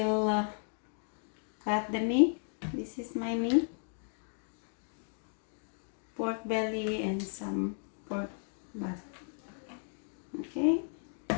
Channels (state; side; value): silent; right; 55 dB below the other